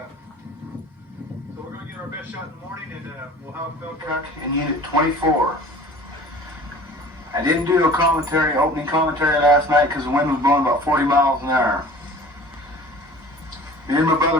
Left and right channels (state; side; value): normal; both; correlation 0.44